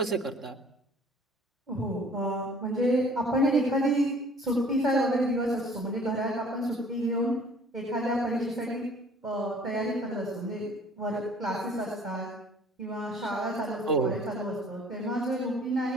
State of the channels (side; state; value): both; normal; correlation 0.53